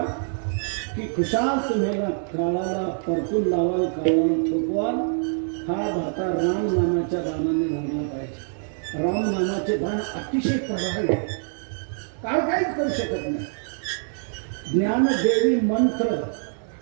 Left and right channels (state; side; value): silent; left; 62 dB below the other